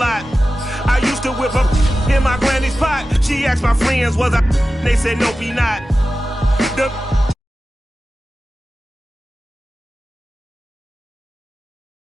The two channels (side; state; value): both; normal; correlation 0.94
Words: I used to whip up in my granny's pot. She asked my friends, was I? They said, nope, he not.